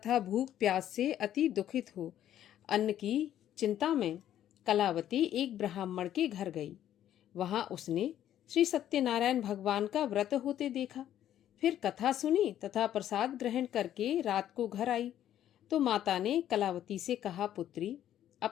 भूख प्यास से अति दुखित हो अन्न की चिंता में कलावती एक ब्राह्मण के घर गई। वहां उसने श्री सत्यनारायण भगवान का व्रत होते देखा। फिर कथा सुनी तथा प्रसाद ग्रहण करके रात को घर आई तो माता ने कलावती से कहा, पुत्री,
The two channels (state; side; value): quieter; right; 11.3 dB